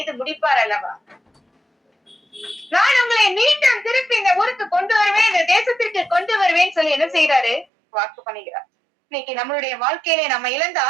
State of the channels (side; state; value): left; drops out; at 7.7 s